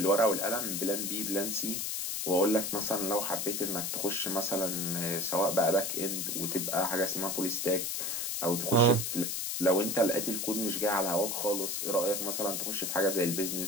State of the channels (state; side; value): noise; left; hiss, 2 dB below the sound